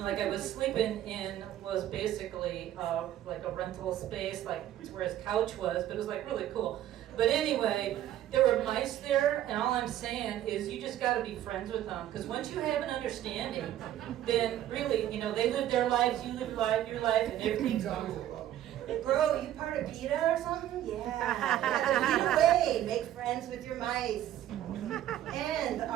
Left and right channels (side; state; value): left; quieter; 12.2 dB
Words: like I was sleeping in was basically like a rental space, like where his couch was, but it was like really cool. But anyway, there were mice there, and all I'm saying is you just got to be friends with them, because once you have an understanding, then really, you know, they live their lives, you live your life, and everything's cool. bro, you part of PETA or something? Yeah. Either way, make friends with your mice. And